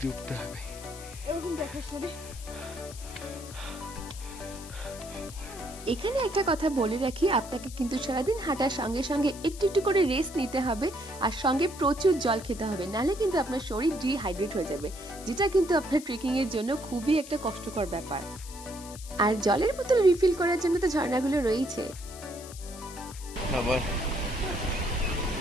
উঠতে হবে। এরকম দেখার সাথে এখানে একটা কথা বলে রাখি, আপনাকে কিন্তু সারাদিন হাঁটার সঙ্গে সঙ্গে একটু একটু করে রেস্ট নিতে হবে, আর সঙ্গে প্রচুর জল খেতে হবে, নাহলে কিন্তু আপনার শরীর ডিহাইড্রেট হয়ে যাবে, যেটা কিন্তু আপনার ট্রেকিং এর জন্য খুবই একটা কষ্টকর ব্যাপার। আর জলের বোতল রিফিল করার জন্য তো ঝর্ণাগুলো রয়েছে। আবার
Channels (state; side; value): noise; left; hiss, 15 dB below the sound